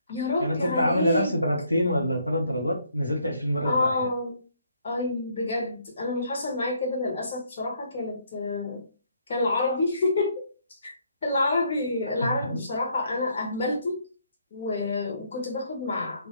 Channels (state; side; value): inverted; both; correlation -0.69